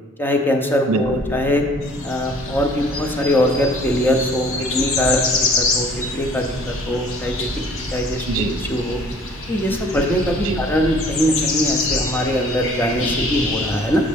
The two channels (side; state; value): both; normal; correlation 0.53